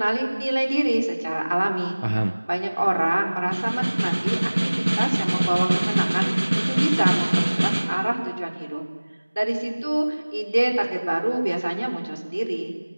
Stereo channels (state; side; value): inverted; both; correlation -1.00